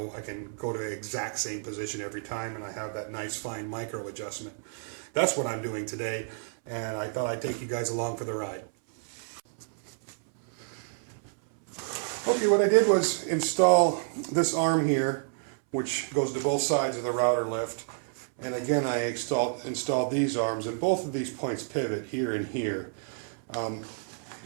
I can go to the exact same position every time, and I have that nice fine micro adjustment. That's what I'm doing today, and I thought I'd take you guys along for the ride. Okay, what I did was install this arm here, which goes to both sides of the router lift. And again, I installed these arms, and both of these points pivot here and here.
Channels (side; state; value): left; silent; 58 dB below the other